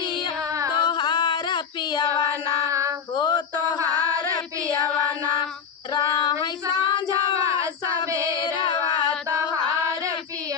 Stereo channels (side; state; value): right; quieter; 6.8 dB